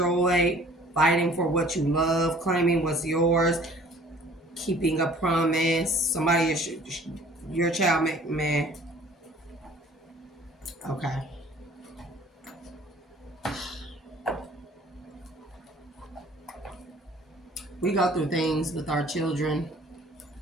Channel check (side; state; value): both; normal; correlation 0.52